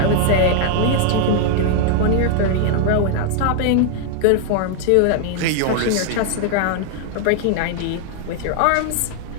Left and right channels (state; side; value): different; both; correlation 0.00